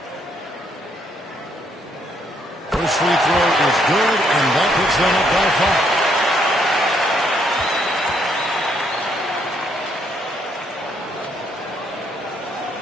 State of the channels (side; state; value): both; normal; correlation 0.71